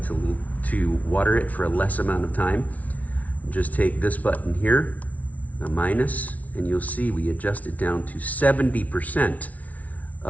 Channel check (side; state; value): right; late; 0.070 ms